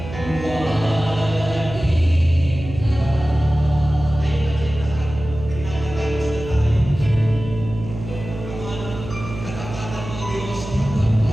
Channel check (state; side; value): noise; right; hum, 10 dB below the sound